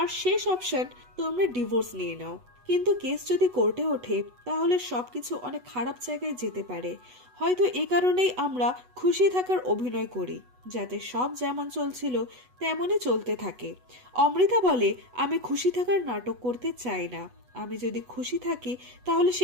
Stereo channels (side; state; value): left; late; 8.1 ms